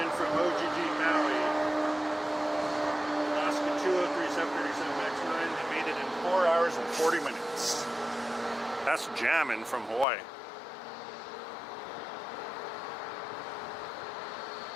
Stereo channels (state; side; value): drops out; right; at 10.1 s